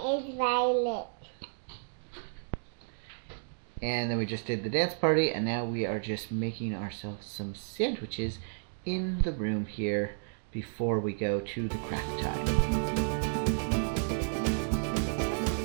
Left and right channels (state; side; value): silent; left; digital silence